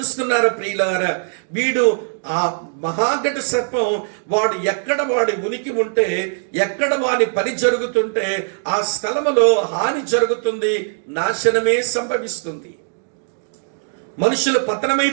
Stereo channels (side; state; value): left; silent; digital silence